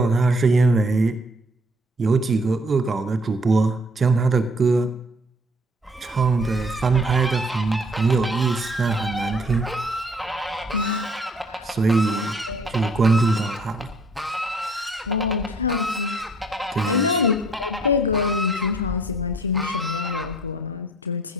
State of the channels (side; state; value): both; normal; correlation 0.59